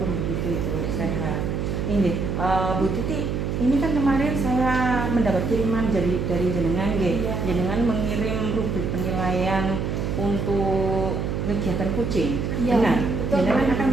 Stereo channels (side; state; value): right; noise; hum, 1 dB below the sound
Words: begitu itu sehat. Ini Bu Titi, ini kan kemarin saya mendapat kiriman dari jenengan, Iya. jenengan mengirim rubrik penilaian untuk kegiatan kucing. Iya, Benar, betul, jenengan Bu. akan